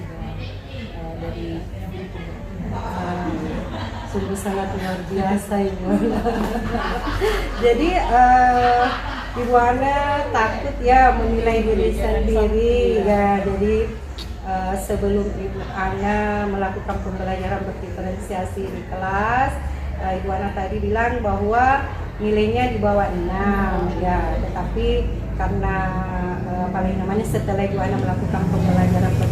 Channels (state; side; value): identical; both; correlation 1.00